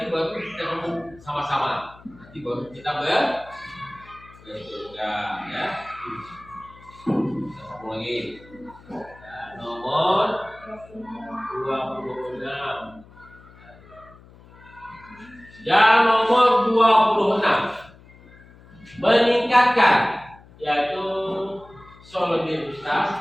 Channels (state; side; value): noise; left; hum, 23 dB below the sound